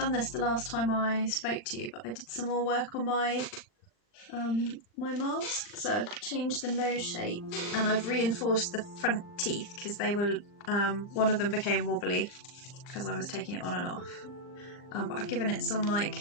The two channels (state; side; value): late; right; 39 ms